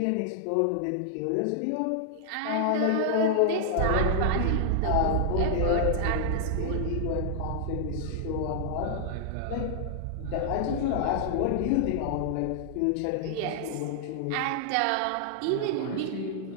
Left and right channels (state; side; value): different; both; correlation -0.01